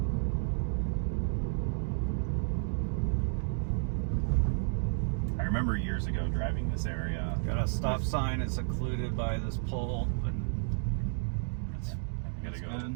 I remember years ago driving this area. Got a stop sign. It's occluded by this pole. But You gotta go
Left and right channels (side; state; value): left; silent; digital silence